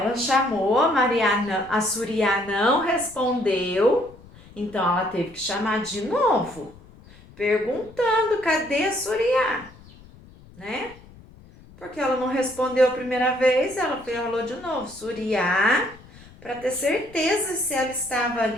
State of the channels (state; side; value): noise; left; rumble, 22 dB below the sound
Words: chamou, a Suriá não respondeu, então ela teve que chamar de novo, perguntando cadê a Suriá, né? Porque ela não respondeu a primeira vez, ela falou de novo, Suriá, para ter certeza se ela estava